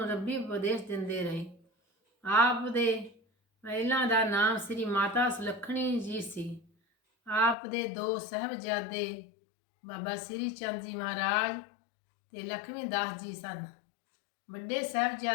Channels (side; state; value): right; drops out; at 7.6 s